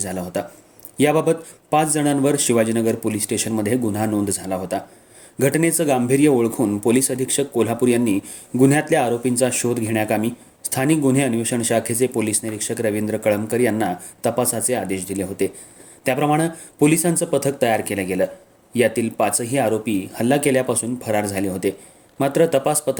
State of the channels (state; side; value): identical; both; correlation 1.00